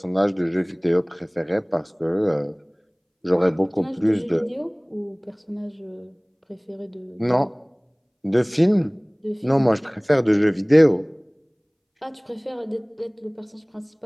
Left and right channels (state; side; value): identical; both; correlation 1.00